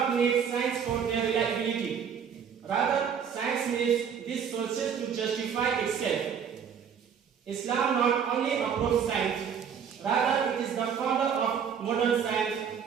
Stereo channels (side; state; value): left; quieter; 7.5 dB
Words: need science for their reliability. Rather, science needs these sources to justify itself. Islam not only approves science, rather it is the founder of modern science.